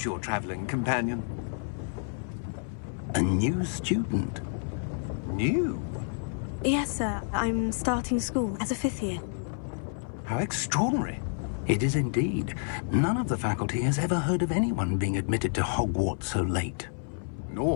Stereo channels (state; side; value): silent; right; 57 dB below the other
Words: your traveling companion? A new student. New? Yes, sir. I'm starting school as a 5th year. How extraordinary. It is indeed. None of the faculty has ever heard of anyone being admitted to Hogwarts so late.